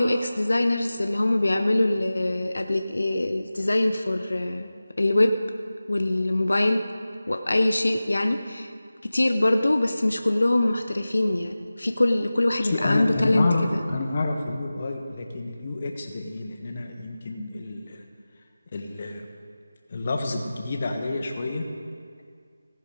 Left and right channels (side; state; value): both; inverted; correlation -0.97